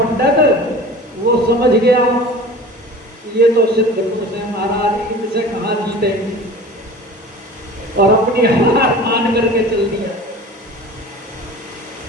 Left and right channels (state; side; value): normal; both; correlation 0.39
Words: वो समझ गया ये तो सिद्ध पुरुष है महाराज, इनसे कहाँ जीते, और अपनी हार मान करके चल दिया।